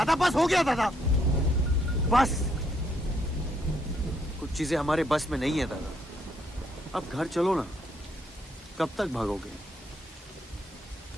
बस हो गया दादा, बस। कुछ चीजें हमारे बस में नहीं है दादा। अब घर चलो ना, कब तक भागोगे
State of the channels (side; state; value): both; normal; correlation 0.73